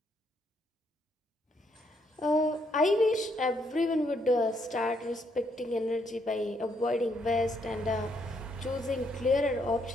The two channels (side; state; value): both; normal; correlation 0.73